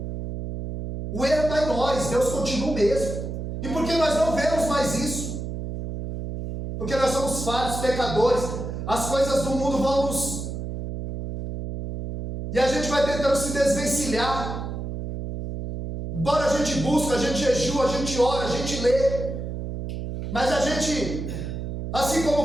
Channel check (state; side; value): noise; right; hum, 6 dB below the sound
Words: O erro está em nós, Deus continua o mesmo. E por que nós não vemos mais isso? Porque nós somos falhos, pecadores. As coisas do mundo vão nos... E a gente vai tentando se desvencilhar. Embora a gente busque, a gente jejua, a gente ora, a gente lê. Mas a gente, assim